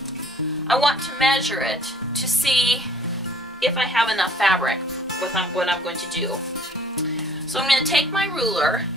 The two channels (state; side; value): normal; both; correlation 0.57